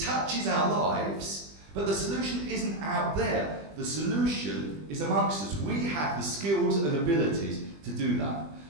our lives, but the solution isn't out there. The solution is amongst us. We have the skills and abilities to do that.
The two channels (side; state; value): left; late; 20 ms